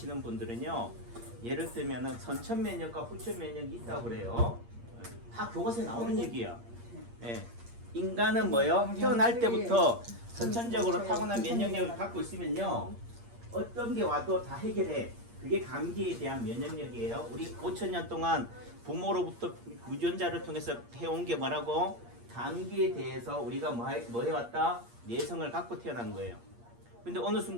분들은요, 예를 들면은 선천 면역과 후천 면역이 있다고 그래요. 다 교과서에 나오는 얘기야. 예. 인간은 뭐요? 태어날 때부터 선천적으로 타고난 면역력을 갖고 있으면요, 어떤 게 와도 다 해결해. 그게 감기에 대한 면역력이에요. 우리 5천년 동안 부모로부터 유전자를 통해서 해온 게 뭐라고? 감기에 대해서 우리가 뭐 해왔다? 내성을 갖고 태어난 거예요. 근데 어느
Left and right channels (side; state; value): left; late; 8.6 ms